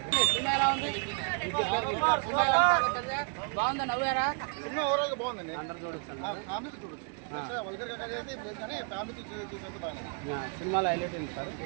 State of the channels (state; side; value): quieter; left; 39.5 dB